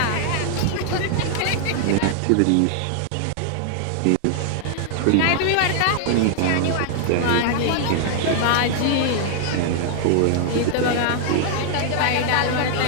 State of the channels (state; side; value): different; both; correlation -0.01